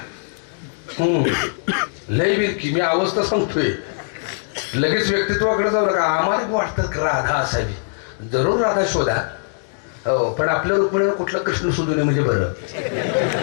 लय विरकी. मी अवस्था सांगतोय, लगेच व्यक्तित्वाकडे जाऊ नका. आम्हाला वाटतं राधा असावी. जरूर राधा शोधा. हो, पण आपल्या रुक्मिणीवर कुठला कृष्ण शोधू नये म्हणजे बरं.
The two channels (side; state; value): right; silent; digital silence